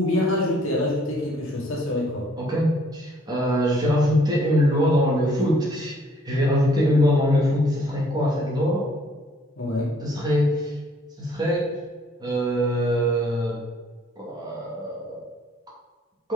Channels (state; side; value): normal; both; correlation 0.62